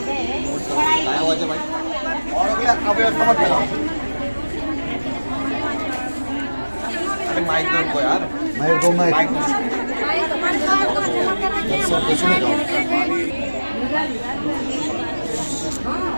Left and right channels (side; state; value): both; inverted; correlation -1.00